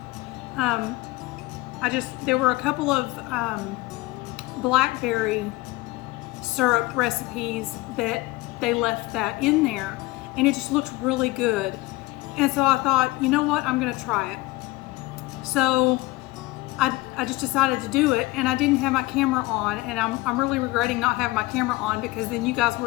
There were a couple of blackberry syrup recipes that they left that in there, and it just looked really good. And so I thought, you know what, I'm gonna try it. So I just decided to do it, and I didn't have my camera on, and I'm really regretting not having my camera on, because then you guys would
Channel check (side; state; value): right; quieter; 20.8 dB